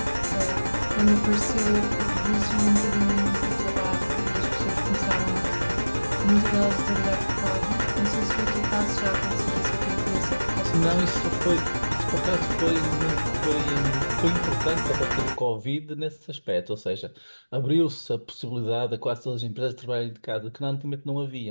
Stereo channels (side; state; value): both; inverted; correlation -1.00